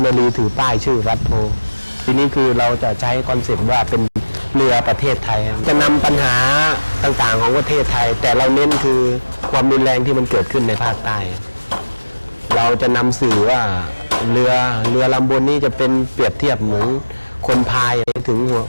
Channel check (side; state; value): both; inverted; correlation -1.00